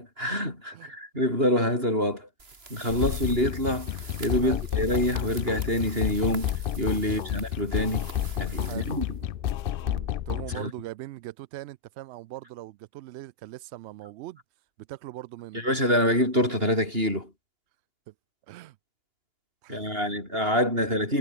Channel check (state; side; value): late; left; 2.9 ms